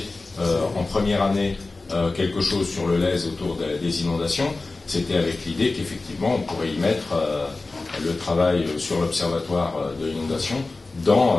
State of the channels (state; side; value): quieter; right; 3.4 dB